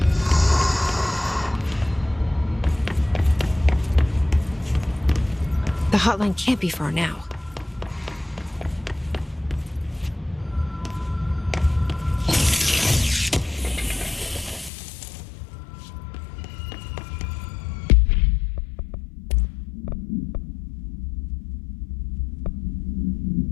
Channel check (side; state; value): right; drops out; at 14.7 s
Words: The hotline can't be far now.